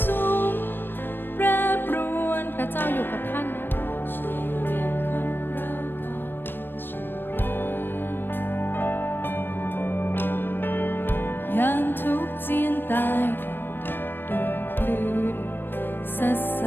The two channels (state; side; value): late; right; 0.096 ms